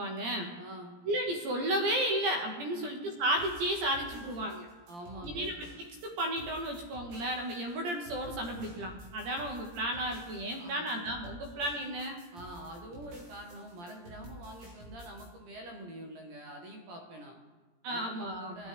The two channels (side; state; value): left; late; 17 ms